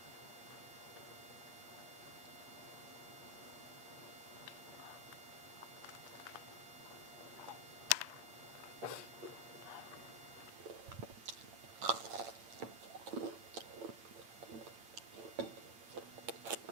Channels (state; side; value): late; left; 8.9 ms